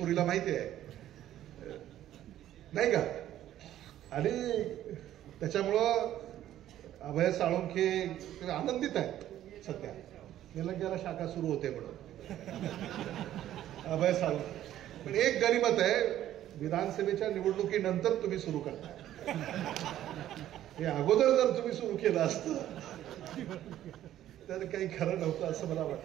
माहिती आहे नाही का. आणि त्याच्यामुळं अभय साळुंके आनंदित आहेत सध्या. निलंग्याला शाखा सुरू होते म्हणून अभय साळुंके. पण एक गनिमत आहे, विधानसभेच्या निवडणुकीनंतर तुम्ही सुरू करताय. हे अगोदर जर तुम्ही सुरू केलं असतं तर काही खरं नव्हतं असं मला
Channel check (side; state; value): left; quieter; 12.5 dB